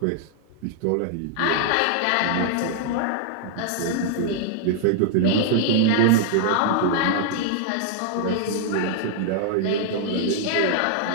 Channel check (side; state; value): both; different; correlation 0.00